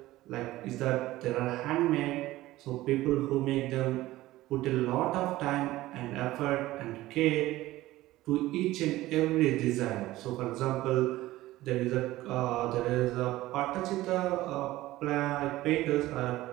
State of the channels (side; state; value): left; quieter; 16.8 dB